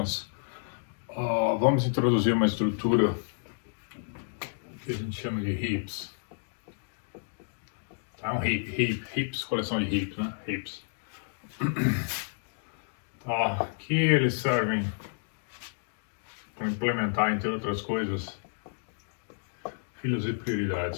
vamos introduzir uma estrutura que a gente chama de heaps. Tá? Um heaps, coleção de heaps, né? Heaps. Tá? Que eles servem para implementar, entre outras coisas, filas e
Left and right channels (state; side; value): silent; right; digital silence